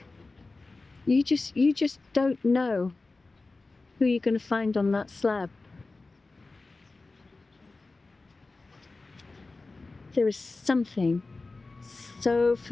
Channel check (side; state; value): right; quieter; 3.5 dB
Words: You just don't know who you're going to find on that slab. There is something so